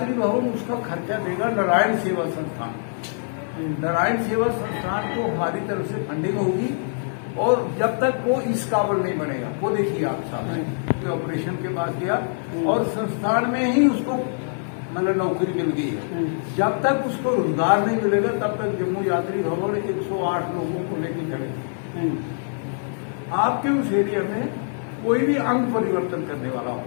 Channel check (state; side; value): silent; right; digital silence